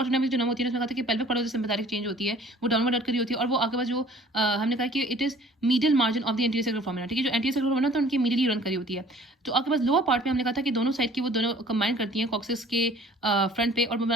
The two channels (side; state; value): both; normal; correlation 0.52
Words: जो नर्व होती है उसमें कहा था कि pelvic part of the sympathetic change होती है वो डाउनवर्ड अट करी होती है, और वो आपके पास जो हमने कहा कि it is medial margin of the anterior sacral foramina, ठीक है, जो एंटीरियर सेक्रल फोरामेना होता है उनकी मीडियली रन करी होती है। तो आपके पास लोअर पार्ट में हमने कहा था कि दोनों साइड की वो दोनों कंबाइन करती हैं कॉक्सिस के फ्रंट पे और